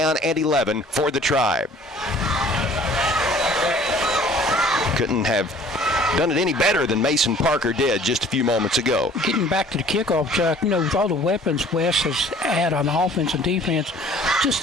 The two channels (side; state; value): both; normal; correlation 0.52